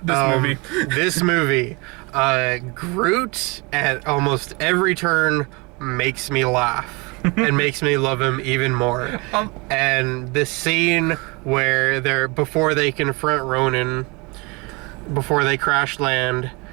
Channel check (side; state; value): left; quieter; 27.7 dB